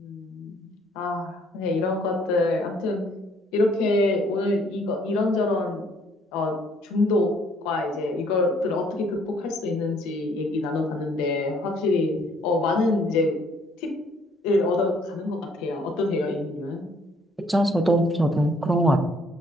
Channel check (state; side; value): normal; both; correlation 0.63